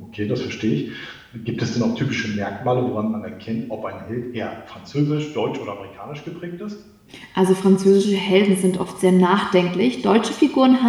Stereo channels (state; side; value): identical; both; correlation 1.00